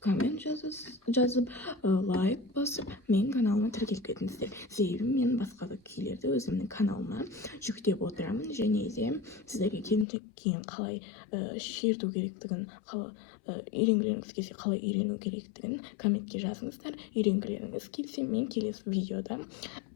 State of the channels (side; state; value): right; drops out; at 10.1 s